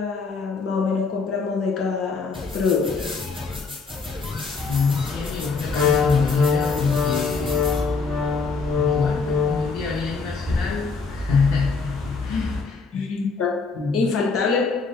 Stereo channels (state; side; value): quieter; right; 4.5 dB